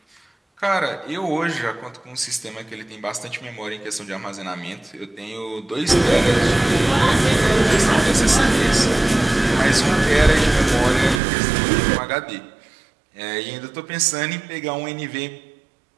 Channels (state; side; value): drops out; left; at 11.2 s